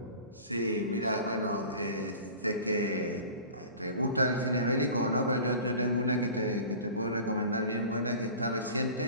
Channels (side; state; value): both; inverted; correlation -0.40